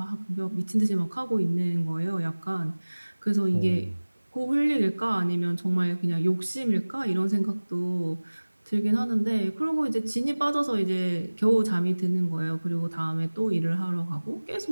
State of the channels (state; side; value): inverted; both; correlation -1.00